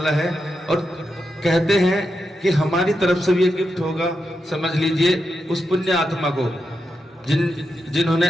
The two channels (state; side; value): normal; both; correlation 0.86